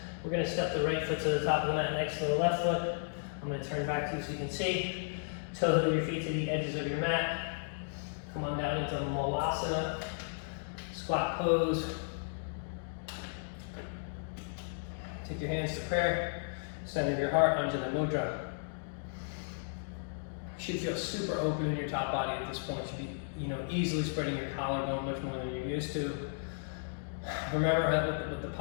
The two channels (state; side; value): silent; right; digital silence